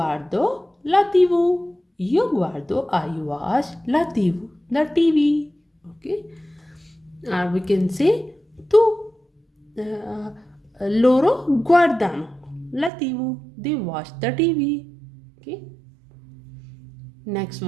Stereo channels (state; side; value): drops out; left; at 12.9 s